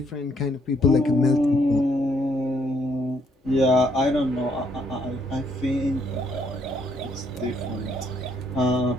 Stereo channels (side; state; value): both; normal; correlation 0.70